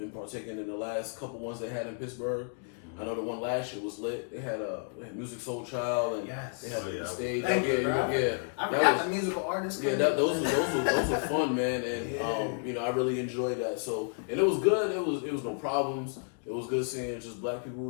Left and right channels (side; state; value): right; silent; 57 dB below the other